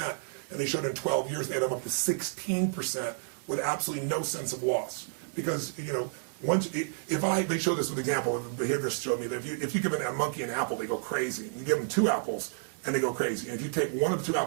and they showed in 12 years they had them up to 16% with absolutely no sense of loss. Because, they show this with example, the behaviorists showed me that if you give a monkey an apple, they go crazy. And you give them 2 apples, and they go crazy. And if you take one of the 2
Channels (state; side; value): silent; left; 55 dB below the other